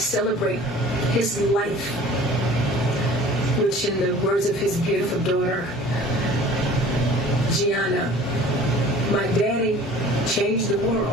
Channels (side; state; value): both; normal; correlation 0.46